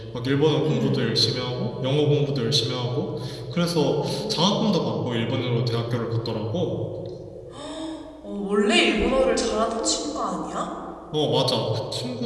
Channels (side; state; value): both; identical; correlation 1.00